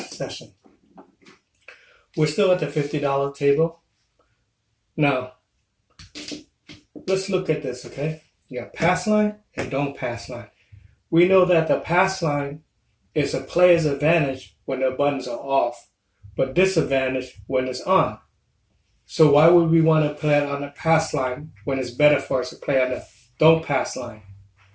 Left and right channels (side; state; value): both; identical; correlation 1.00